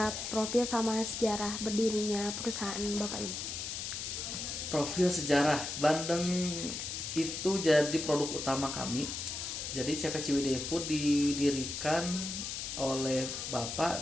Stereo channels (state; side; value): noise; left; hiss, 5 dB below the sound